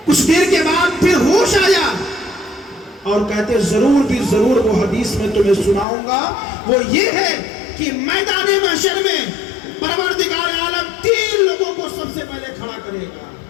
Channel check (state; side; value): drops out; right; at 5.9 s